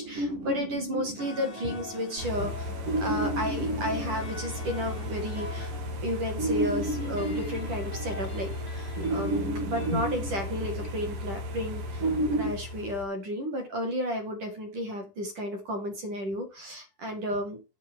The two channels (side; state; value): left; late; 10 ms